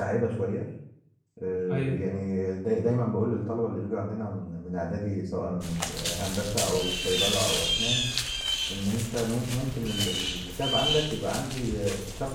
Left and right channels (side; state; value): both; identical; correlation 1.00